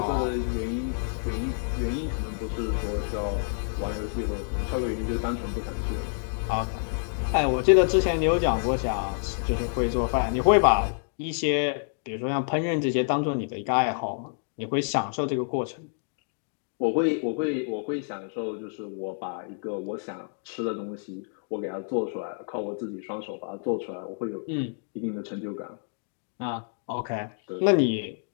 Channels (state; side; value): silent; right; digital silence